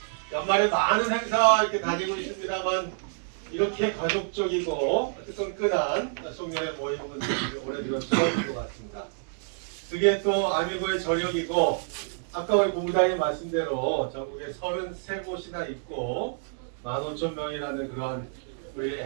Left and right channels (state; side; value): silent; left; digital silence